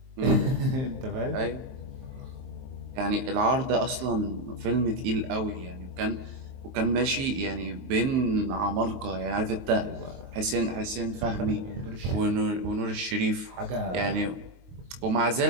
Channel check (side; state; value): left; late; 23 ms